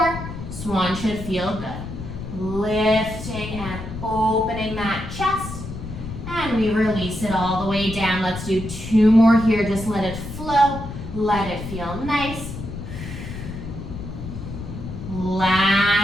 Swan should feel good. Lifting and opening that chest. And we release it all the way down. Let's do 2 more here. Just let it flow. Let it feel nice.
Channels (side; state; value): left; noise; rumble, 9 dB below the sound